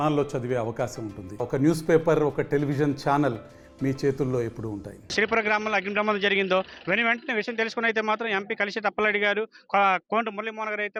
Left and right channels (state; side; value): identical; both; correlation 1.00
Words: చదివే అవకాశం ఉంటుంది. ఒక న్యూస్ పేపర్, ఒక టెలివిజన్ ఛానల్ మీ చేతుల్లో ఎప్పుడూ ఉంటాయి. శ్రీపురం గ్రామంలో అగ్ని ప్రమాదం జరిగిందో వెంటనే విషయం తెలుసుకుని అయితే మాత్రం ఎంపీ కలిసి అప్పలరెడ్డి గారు, కోంట మురళీమోహన్ గారు